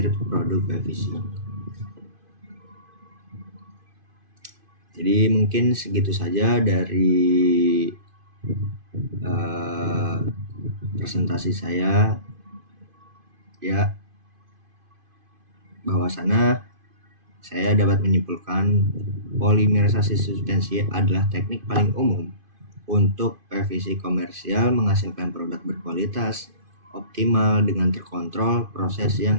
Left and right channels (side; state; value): left; late; 2.5 ms